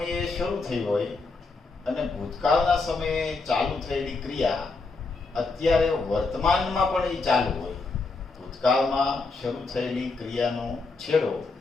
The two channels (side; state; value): right; quieter; 3.9 dB